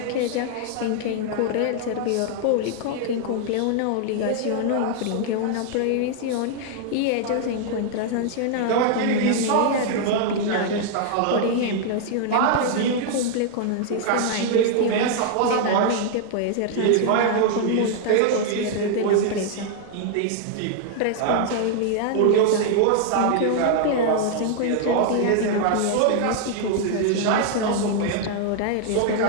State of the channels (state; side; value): different; both; correlation 0.00